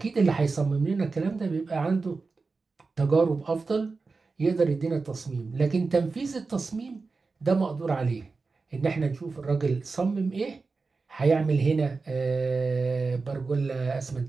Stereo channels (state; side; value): quieter; left; 4.2 dB